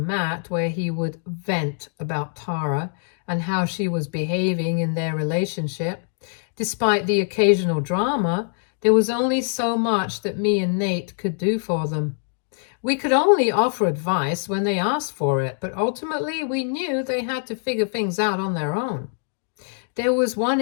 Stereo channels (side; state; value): right; silent; 63 dB below the other